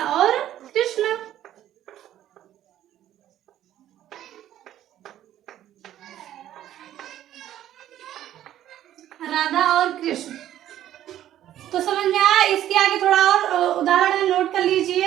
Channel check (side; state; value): left; quieter; 12.2 dB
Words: और कृष्ण। राधा और कृष्ण, तो समझ में आया? इसके आगे थोड़ा और उदाहरण नोट कर